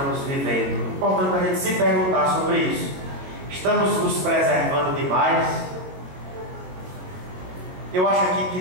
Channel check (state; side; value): late; left; 22 ms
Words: vivendo? É importante a gente se perguntar sobre isso. Estamos nos preservando demais? Eu acho aqui que